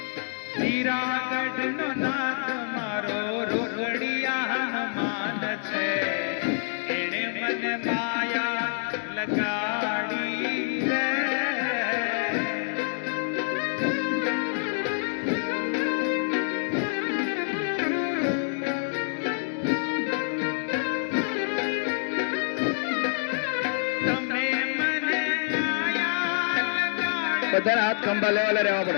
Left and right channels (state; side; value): silent; right; digital silence